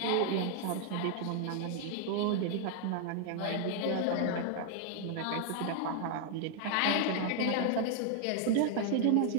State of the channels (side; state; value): both; different; correlation 0.00